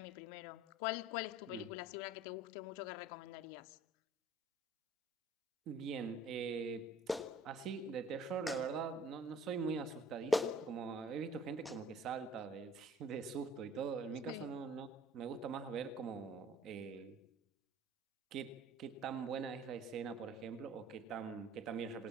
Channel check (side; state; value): both; normal; correlation 0.51